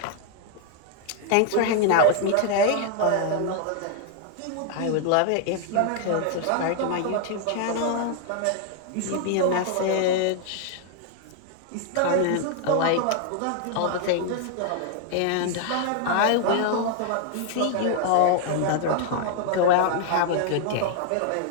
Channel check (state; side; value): different; both; correlation 0.00